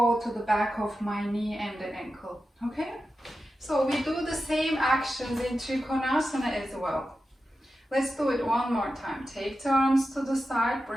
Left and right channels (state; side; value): normal; both; correlation 0.91